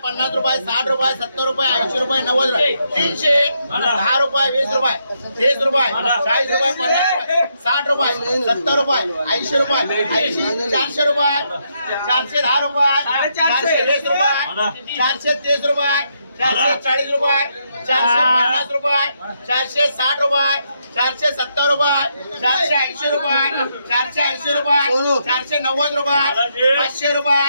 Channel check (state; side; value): inverted; both; correlation -0.78